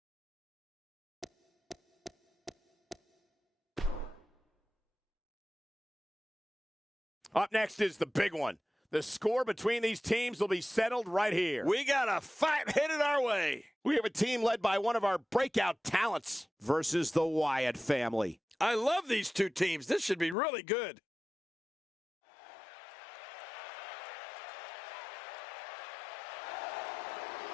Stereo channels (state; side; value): drops out; right; at 20.4 s